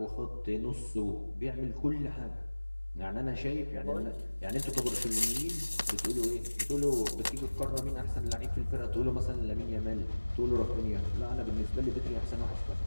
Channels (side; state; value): both; inverted; correlation -1.00